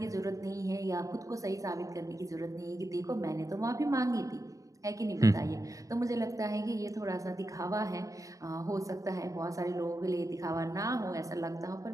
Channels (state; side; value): late; left; 0.16 ms